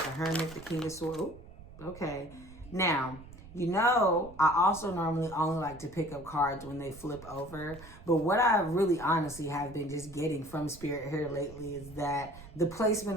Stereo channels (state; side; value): noise; right; rumble, 18 dB below the sound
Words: the Hermit, the King of Swords. Ooh, okay. Now, you know, I also normally only like to pick up cards when they flip over. But what I really honestly have been just getting from Spirit here lately is that the